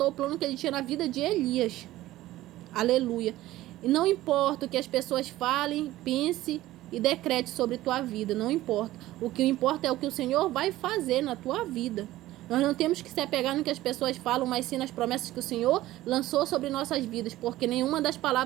o plano que ele tinha na vida de Elias. Aleluia. E não importa o que as pessoas falem, pense e decrete sobre tua vida, não importa. O que importa é o que o Senhor vai fazer na tua vida. Nós não temos que se apegar no que as pessoas falam, mas sim nas promessas que o Senhor lançou sobre nossas vidas, porque nenhuma das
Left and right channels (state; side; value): quieter; left; 15.9 dB